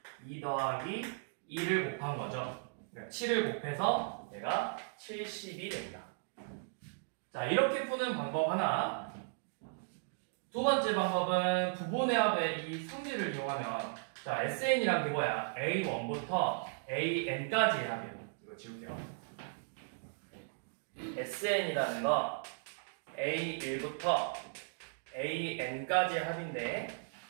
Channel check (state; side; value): silent; left; digital silence